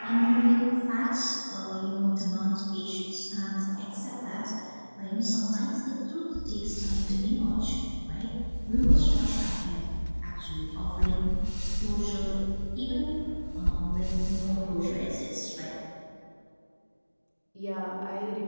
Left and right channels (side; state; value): both; inverted; correlation -1.00